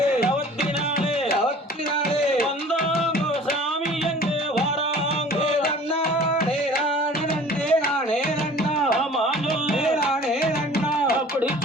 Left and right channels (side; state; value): both; normal; correlation 0.47